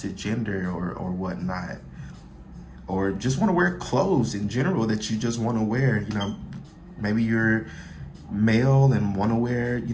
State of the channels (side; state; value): both; identical; correlation 1.00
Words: gender or whatnot, or just want to wear clothes in general that you just want to wear. You know, maybe you're male and want to wear, you